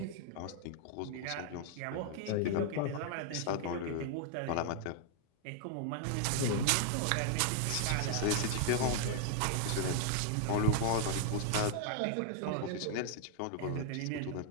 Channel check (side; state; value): both; different; correlation 0.00